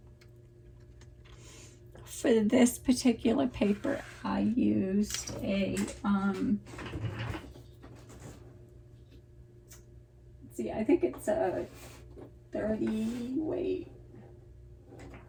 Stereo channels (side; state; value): both; identical; correlation 1.00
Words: for this particular paper, I used a let's see, I think it's a